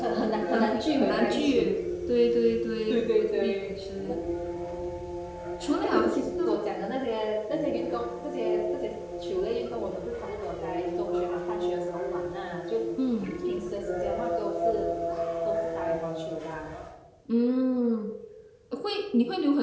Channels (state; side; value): identical; both; correlation 1.00